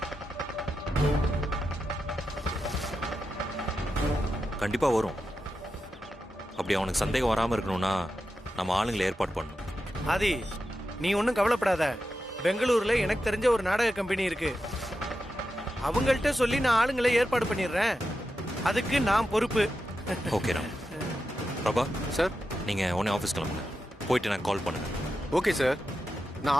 கண்டிப்பா வரும். அப்படி அவனுக்கு சந்தேகம் வராம இருக்கணும்னா நம்ம ஆளுங்களை ஏற்பாடு பண்ணணும். ஆதி, நீ ஒன்றும் கவலைப்படாத. பெங்களூர்ல எனக்கு தெரிஞ்ச ஒரு நாடக கம்பெனி இருக்கு. அவங்கள்ட்ட சொல்லி நான் ஆளுங்களை ஏற்பாடு பண்ணிடுறேன். அதுக்கு நான் பொறுப்பு. ஓகே ராம். பிரபா சார்? நீங்க உடனே ஆஃபீஸ் கிளம்புங்க. போயிட்டு நான் கால் பண்ணுங்க. ஓகே சார், நான்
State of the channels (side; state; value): both; normal; correlation 0.89